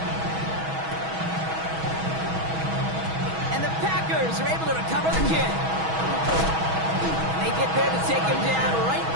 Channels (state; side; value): late; left; 6.2 ms